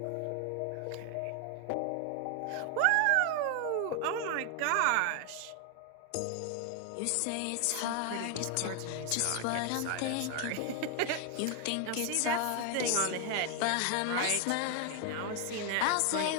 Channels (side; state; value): both; different; correlation 0.00